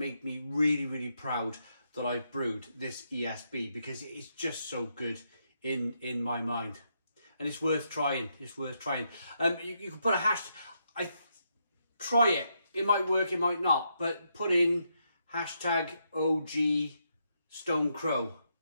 me really, really proud that I've brewed this ESB, because it is just so good in my mind, and it's worth trying. It's worth trying. You can put a hashtag. Try it. It might work. It might not. But put in hashtag OG Stone Crow.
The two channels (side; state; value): both; inverted; correlation -0.79